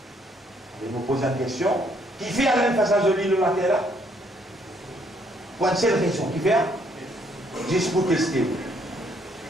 Je me pose une question. Qui fait à même face à joli le matin là? Pour une seule raison. Qui fait? Juste pour tester.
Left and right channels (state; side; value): normal; both; correlation 0.68